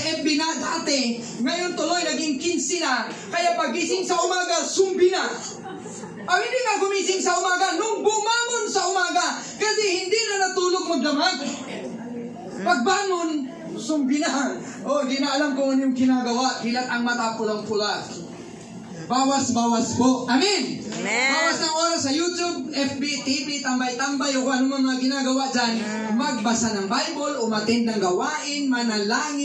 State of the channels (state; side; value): identical; both; correlation 1.00